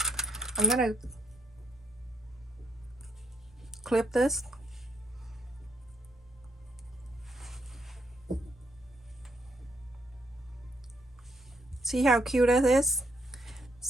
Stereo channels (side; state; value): both; normal; correlation 0.72